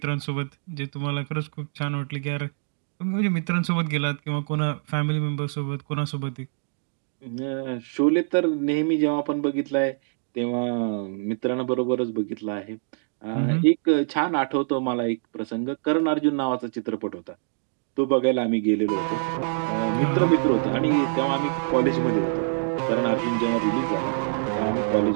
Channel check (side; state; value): left; silent; digital silence